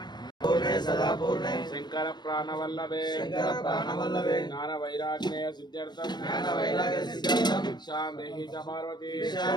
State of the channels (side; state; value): right; late; 0.21 ms